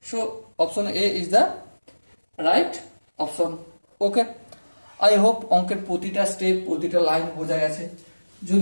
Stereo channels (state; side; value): inverted; both; correlation -1.00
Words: So option A is the right option. Okay, I hope অঙ্কের প্রতিটা স্টেপ প্রতিটা লাইন বোঝা গেছে।